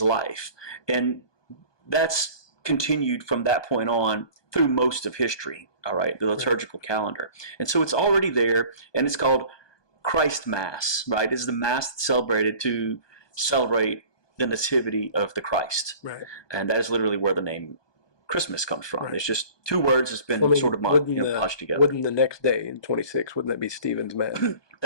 And that's continued from that point on through most of history, all right, the liturgical calendar. And so it's already there, and it's called Christ Mass, right? It's the Mass that's celebrated to celebrate the nativity of the Christ. Right. And that is literally where the name Christmas comes from. Right. It's just 2 words that's been sort of pushed together. Wouldn't the next day in 26, wouldn't that be Stephen's Mass?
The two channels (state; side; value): late; right; 1.2 ms